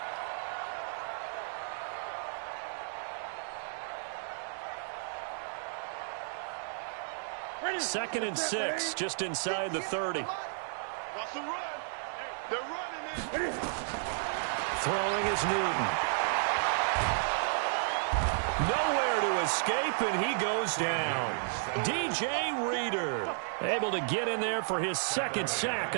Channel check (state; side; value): silent; left; digital silence